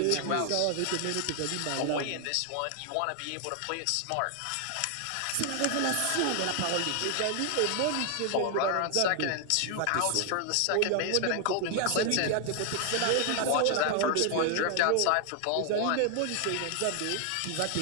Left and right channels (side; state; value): both; different; correlation 0.00